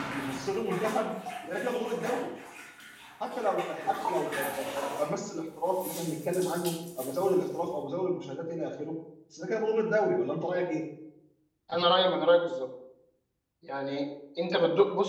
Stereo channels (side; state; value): both; identical; correlation 1.00